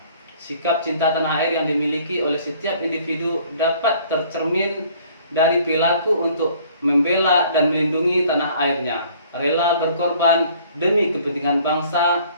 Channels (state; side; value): inverted; both; correlation -0.56